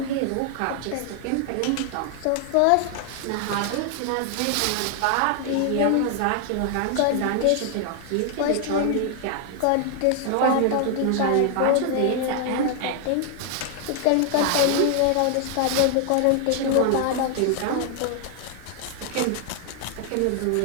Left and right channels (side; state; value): both; different; correlation 0.00